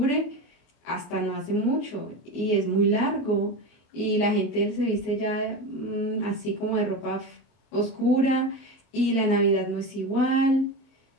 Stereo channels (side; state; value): right; late; 24 ms